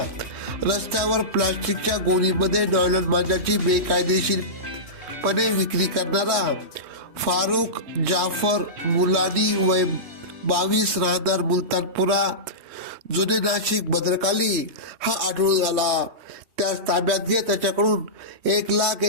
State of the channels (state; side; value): late; left; 3.2 ms